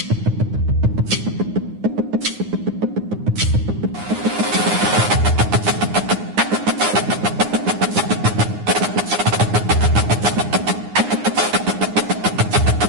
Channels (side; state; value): left; late; 9.7 ms